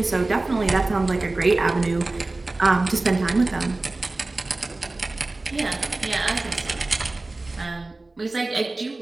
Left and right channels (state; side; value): quieter; left; 3.1 dB